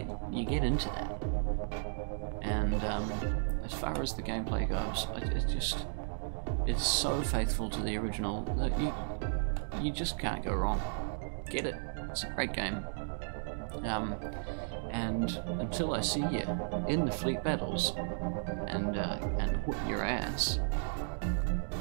into that. And as far as the gameplay goes, it's so faithful to the original that you just can't go wrong. Get it. It's a great game. And until I see you in the fleet battles and whoop your ass,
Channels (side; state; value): left; silent; digital silence